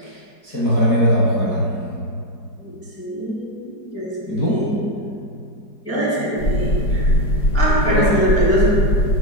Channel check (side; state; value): right; late; 4.8 ms